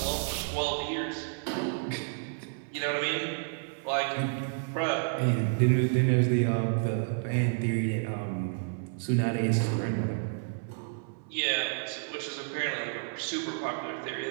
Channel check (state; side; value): silent; left; 58 dB below the other